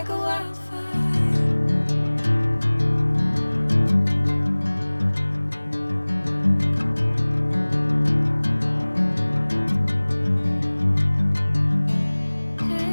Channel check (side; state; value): both; inverted; correlation -1.00